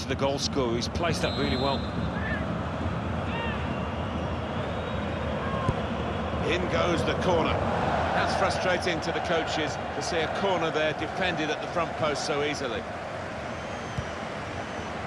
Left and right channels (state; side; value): identical; both; correlation 1.00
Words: the goal scorer. He's placed that really well. In goes the corner. That's frustrating to the coaches to see a corner there defended at the front post so easily.